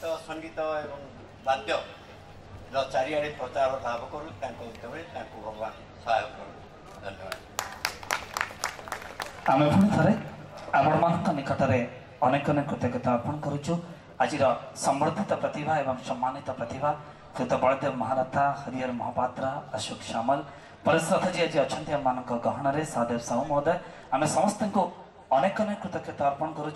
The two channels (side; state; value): both; identical; correlation 1.00